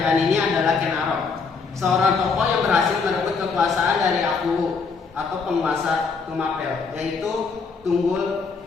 ini adalah Ken Arok, seorang tokoh yang berhasil merebut kekuasaan dari Aku atau penguasa Tumapel, yaitu Tunggul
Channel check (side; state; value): right; quieter; 5.0 dB